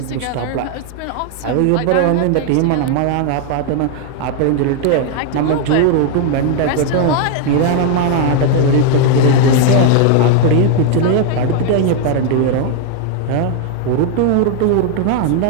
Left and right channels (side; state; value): both; different; correlation 0.00